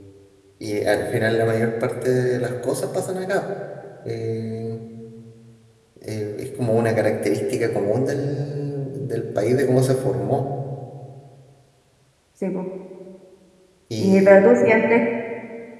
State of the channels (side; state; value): both; identical; correlation 1.00